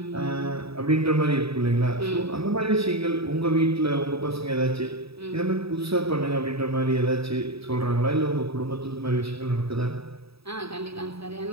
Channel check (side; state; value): left; late; 0.77 ms